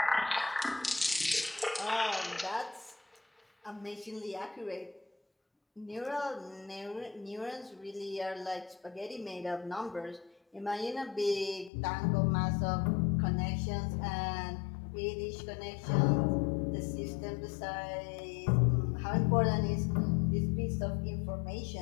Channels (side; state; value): right; drops out; at 11.7 s